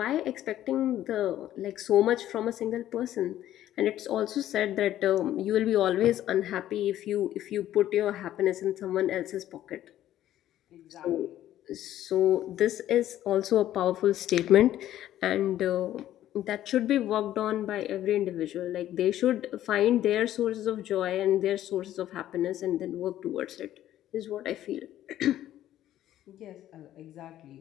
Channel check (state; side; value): quieter; right; 12.6 dB